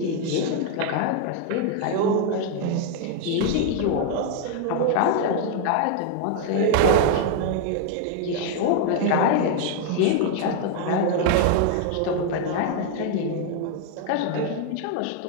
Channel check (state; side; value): different; both; correlation 0.00